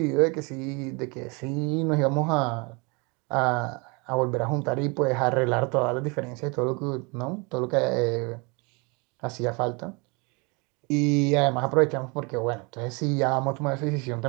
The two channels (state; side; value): quieter; left; 29.9 dB